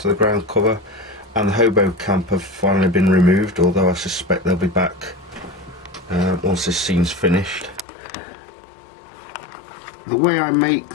of the ground cover, and the hobo camp have finally been removed, although I suspect they'll be back once this scene's finished. The way I make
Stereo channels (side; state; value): right; drops out; at 7.9 s